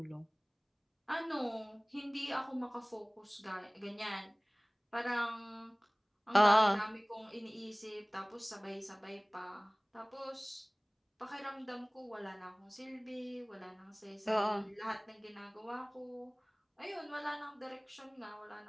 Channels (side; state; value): both; identical; correlation 1.00